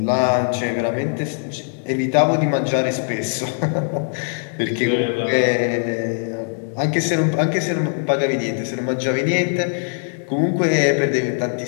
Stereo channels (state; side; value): silent; right; 65 dB below the other